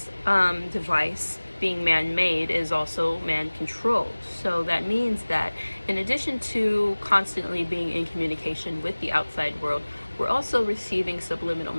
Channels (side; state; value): both; inverted; correlation -1.00